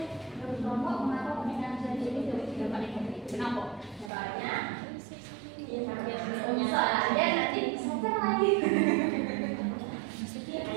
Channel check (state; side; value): drops out; left; at 4.1 s